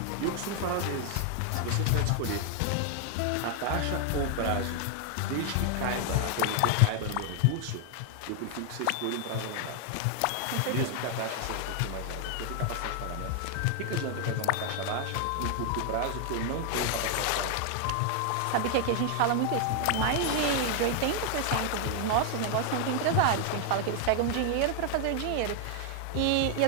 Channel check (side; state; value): both; different; correlation 0.00